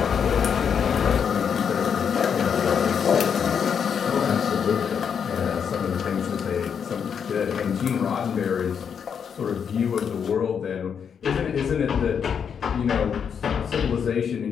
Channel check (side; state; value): right; quieter; 7.2 dB